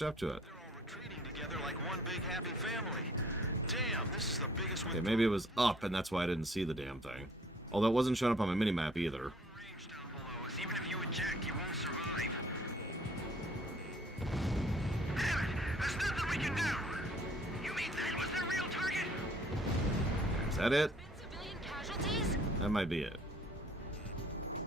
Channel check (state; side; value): normal; both; correlation 0.58